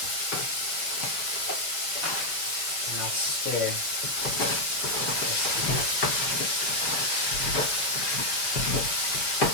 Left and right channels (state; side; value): late; right; 5.7 ms